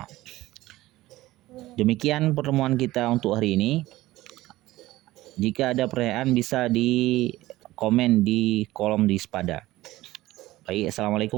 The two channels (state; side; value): quieter; left; 17.1 dB